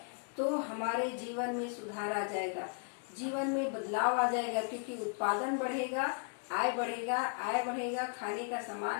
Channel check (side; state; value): right; quieter; 39.7 dB